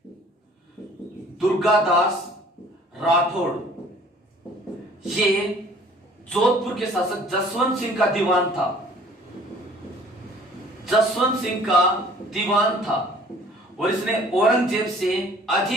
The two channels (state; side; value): normal; both; correlation 0.53